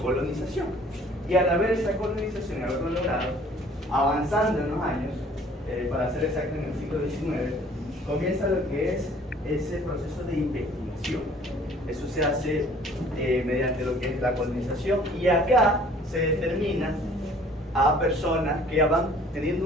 Y al haber esa colonización y haberlo logrado, avanzando en los años, para ser exacto en el siglo XIX, comienza lo que es ese proceso de investigación. Eso se hace mediante lo que es la colonización, y acá se determina a personas que van teniendo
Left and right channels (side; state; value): both; normal; correlation 0.54